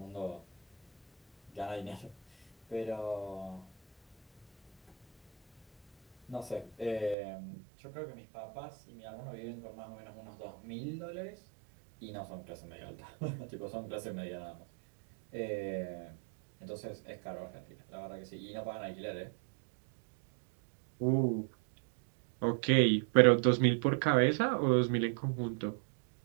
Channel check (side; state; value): left; drops out; at 7.2 s